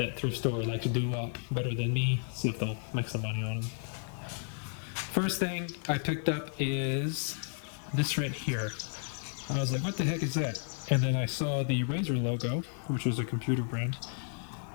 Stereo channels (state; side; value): silent; right; 56 dB below the other